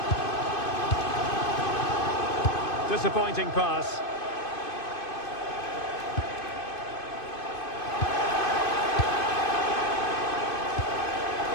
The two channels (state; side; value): late; right; 2.5 ms